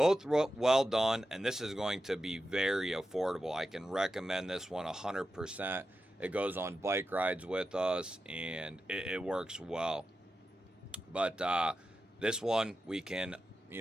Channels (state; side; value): normal; both; correlation 0.91